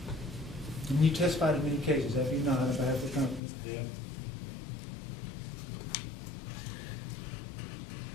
And you testified in many cases, have you not, on behalf of the company? Yeah.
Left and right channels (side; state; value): right; drops out; at 3.4 s